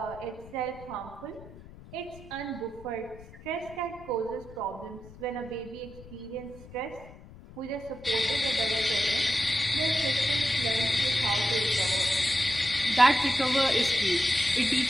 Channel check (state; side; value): noise; left; rumble, 19 dB below the sound